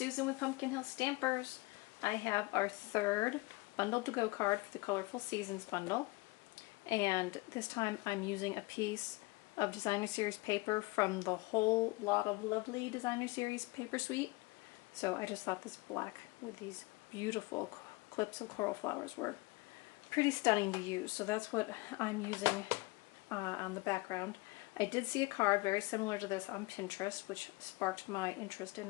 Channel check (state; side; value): quieter; right; 23.5 dB